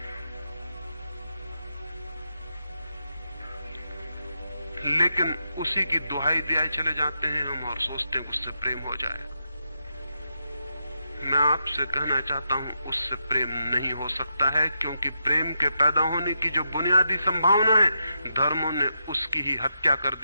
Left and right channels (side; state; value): both; inverted; correlation -0.84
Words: लेकिन उसी की दुहाई दिए चले जाते हैं हम और सोचते हैं उससे प्रेम हो जाएगा। मैं आपसे कहना चाहता हूं उससे प्रेम नहीं हो सकता है, क्योंकि प्रेम के पैदा होने की जो बुनियादी संभावना है, धर्मों ने उसकी ही हत्या कर